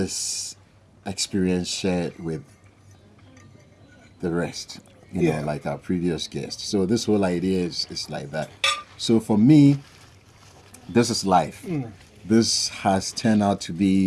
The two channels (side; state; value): both; identical; correlation 1.00